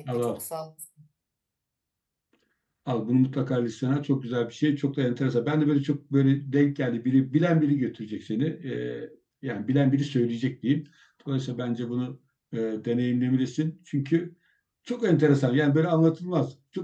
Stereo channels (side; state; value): both; identical; correlation 1.00